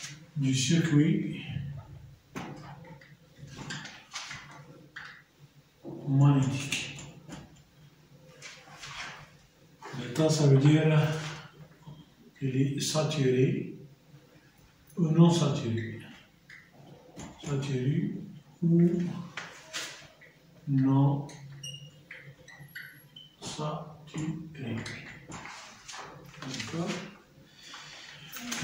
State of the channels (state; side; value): identical; both; correlation 1.00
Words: du circuit magnétique. L'état, ça veut dire qu'il est saturé ou non saturé. Saturé ou non saturé. D'accord?